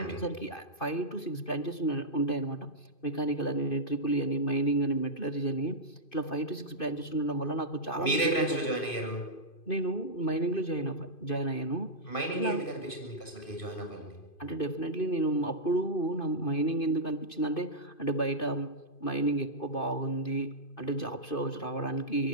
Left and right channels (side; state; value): right; late; 2.5 ms